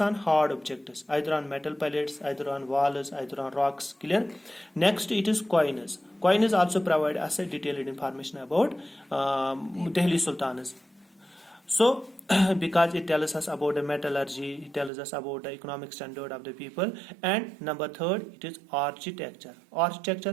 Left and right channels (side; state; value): left; drops out; at 14.9 s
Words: on hard objects, either on metal pellets, either on walls, either on rocks. Clear? Next, it is coins. Coins also provide us a detailed information about Delhi Sultans. So because it tells us about the metallurgy, it tells us about the economic standard of the people. And number third, it is architecture.